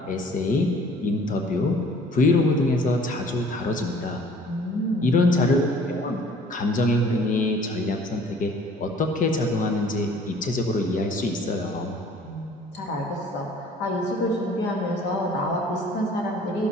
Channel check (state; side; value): normal; both; correlation 0.52